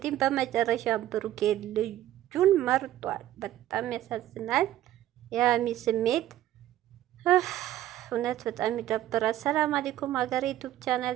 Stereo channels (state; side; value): quieter; left; 13.4 dB